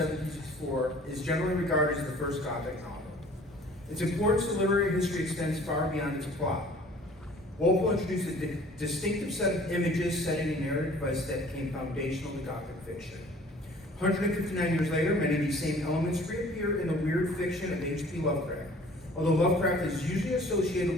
is generally regarded as the first Gothic novel. Its importance to literary history extends far beyond its plot. Walpole introduced a distinctive set of images, setting, and narrative device that became foundational to Gothic fiction. 159 years later, many of these same elements reappear in the weird fiction of H.P. Lovecraft, although Lovecraft is usually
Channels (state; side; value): normal; both; correlation 0.51